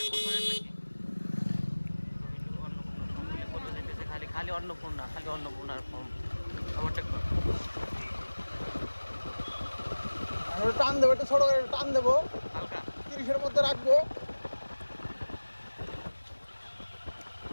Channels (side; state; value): both; inverted; correlation -1.00